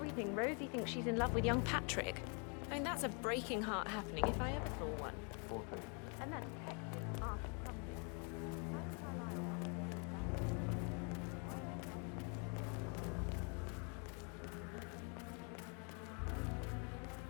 Rosie thinks she's in love with young Patrick. I mean, that's a breaking heart happening if I ever saw one. And that detective asked something.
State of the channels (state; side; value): quieter; right; 36.9 dB